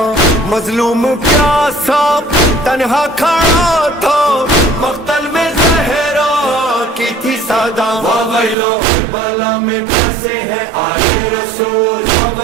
مظلوم پیاسا تنہا کھڑا تھا مقتل میں زہرا کی تھی صدا ویلو کربلا میں پیاسے ہیں آل رسول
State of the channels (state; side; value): drops out; left; at 8.6 s